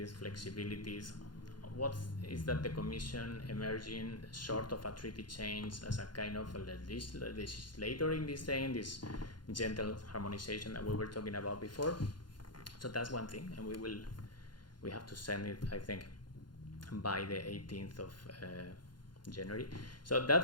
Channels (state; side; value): late; right; 0.71 ms